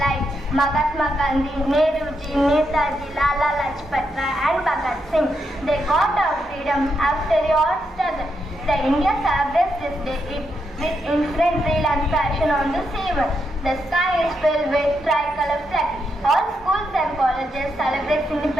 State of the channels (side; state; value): both; normal; correlation 0.82